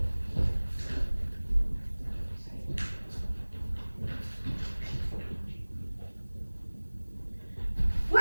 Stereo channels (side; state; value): both; inverted; correlation -1.00